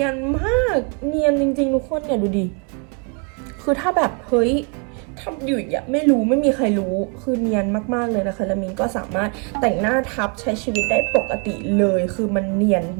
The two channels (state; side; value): quieter; left; 35.4 dB